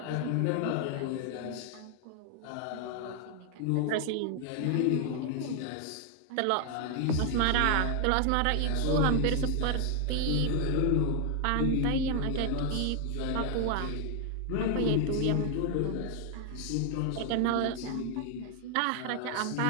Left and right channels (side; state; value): both; different; correlation 0.00